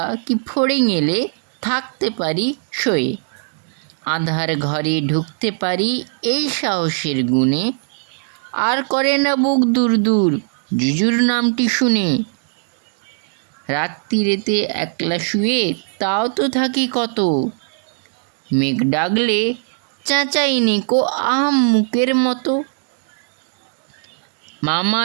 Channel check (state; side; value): silent; left; 66 dB below the other